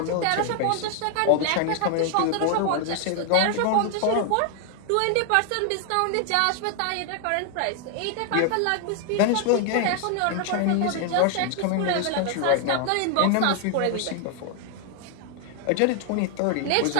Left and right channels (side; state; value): both; different; correlation 0.00